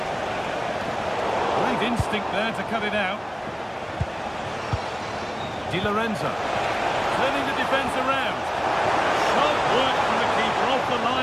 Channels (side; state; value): both; identical; correlation 1.00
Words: Great instinct there to cut it out. Di Lorenzo turning the defence around. Sharp work from the keeper off the